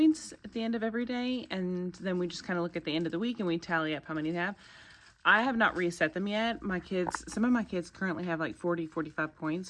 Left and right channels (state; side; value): identical; both; correlation 1.00